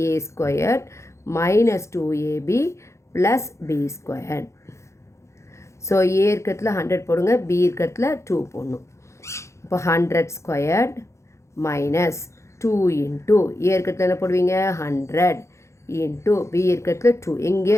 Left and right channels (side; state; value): right; late; 0.14 ms